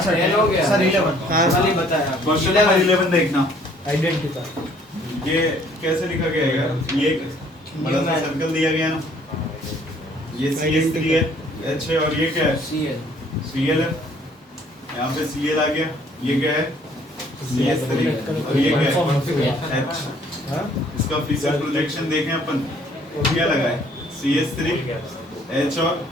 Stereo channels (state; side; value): normal; both; correlation 0.60